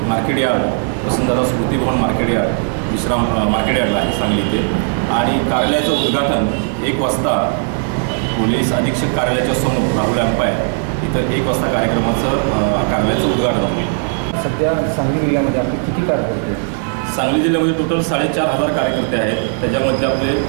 मार्केट यार्ड, वसंतदादा स्मृती भवन मार्केट यार्ड, विश्राम मार्केट यार्डला आहे सांगली इथे। आणि कार्यालयाचं उद्घाटन 1 वाजता पोलीस अधीक्षक कार्यालयाच्या समोर राहुल एम्पायर इथं 1 वाजता कार्यालयाचं उद्घाटन होईल। सध्या सांगली जिल्ह्यामध्ये आपले किती कार्यकर्ते? सांगली जिल्ह्यामध्ये टोटल 4,500 कार्यकर्ते आहेत। त्याच्यामध्ये आपले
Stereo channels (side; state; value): left; silent; 57 dB below the other